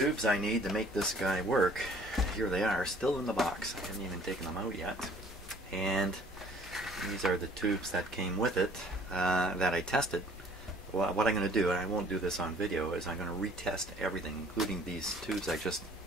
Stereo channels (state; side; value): normal; both; correlation 0.54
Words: I need to make this guy work. Here they are, still in the box. I haven't even taken them out yet. And these are the tubes that came with it that I tested. Well, what I'm going to do, and I won't do this on video, is I'm going to retest everything, including these tubes I just